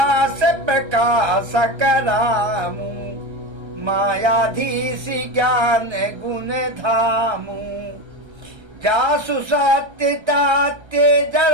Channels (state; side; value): late; left; 1.3 ms